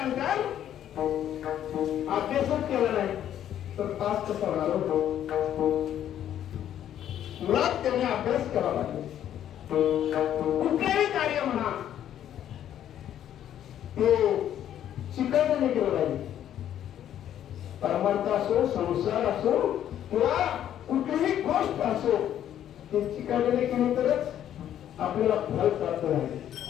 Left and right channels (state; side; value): quieter; right; 10.8 dB